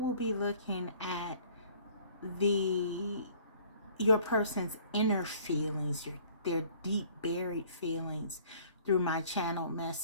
be looking at your person's inner feelings, their deep buried feelings through my channel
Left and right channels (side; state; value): both; inverted; correlation -0.54